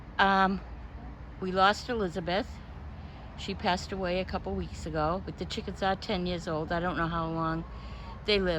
We lost Elizabeth. She passed away a couple weeks ago, but the chickens are 10 years old. I don't know how long they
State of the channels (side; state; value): both; identical; correlation 1.00